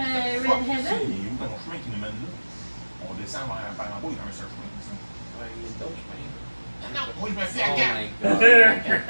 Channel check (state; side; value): inverted; both; correlation -1.00